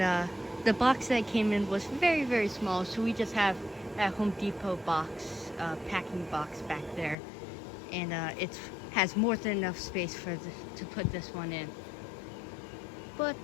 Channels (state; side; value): drops out; right; at 7.2 s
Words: the box that came in was very, very small, so we just have that Home Depot box, packing box back there, and it has more than enough space to put this one in. But